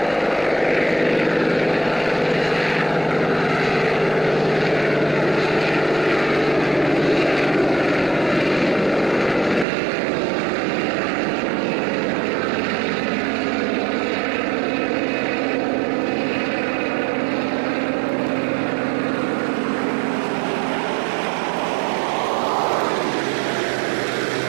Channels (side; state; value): left; drops out; at 9.7 s